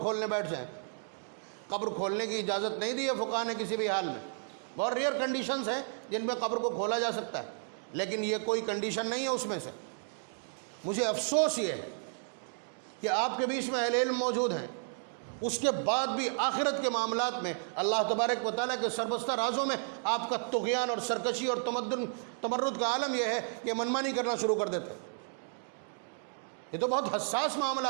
بیٹھ جائیں۔ قبر کھولنے کی اجازت نہیں دی ہے فقہا نے کسی بھی حال میں۔ بہت ریئر کنڈیشنز ہیں جن میں قبر کو کھولا جا سکتا ہے، لیکن یہ کوئی کنڈیشن نہیں ہے اس میں سے۔ مجھے افسوس یہ ہے کہ آپ کے بیچ میں اہل علم موجود ہیں، اس کے بعد بھی آخرت کے معاملات میں اللہ تبارک و تعالیٰ کے سربستہ رازوں میں آپ کا طغیان اور سرکشی اور تمرد کا عالم یہ ہے کہ منمانی کرنا شروع کر دیتے۔ یہ تو بہت حساس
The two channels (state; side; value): silent; left; digital silence